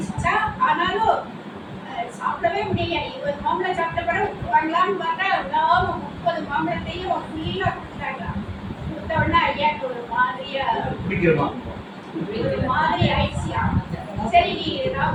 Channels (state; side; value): identical; both; correlation 1.00